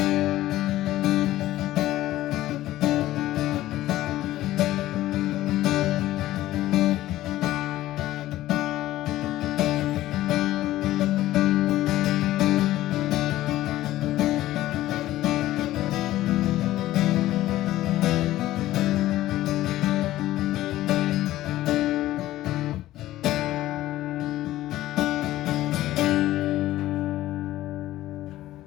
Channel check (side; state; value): right; quieter; 15.2 dB